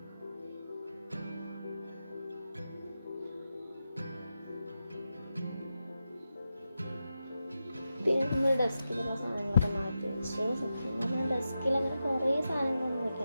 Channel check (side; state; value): both; inverted; correlation -0.90